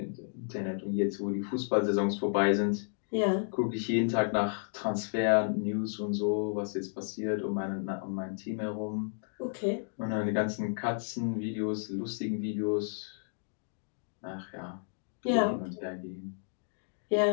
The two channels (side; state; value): right; silent; digital silence